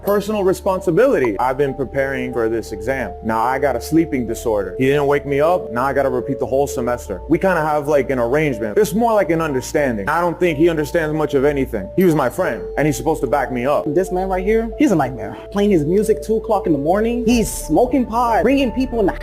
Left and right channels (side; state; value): both; identical; correlation 1.00